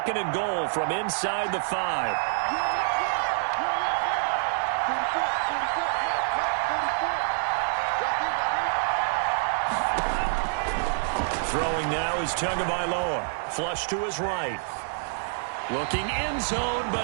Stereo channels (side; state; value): left; silent; 60 dB below the other